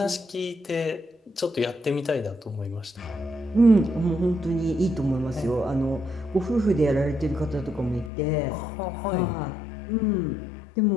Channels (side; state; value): right; drops out; at 8.1 s